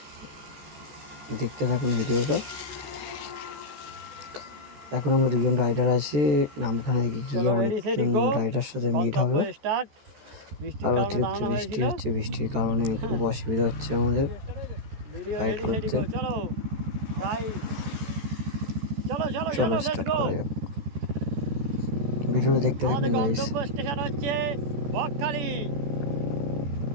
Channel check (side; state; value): left; late; 14 ms